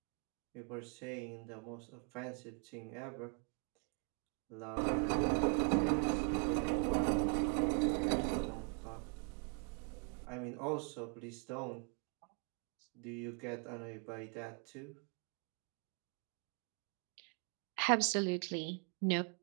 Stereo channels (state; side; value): quieter; left; 38.5 dB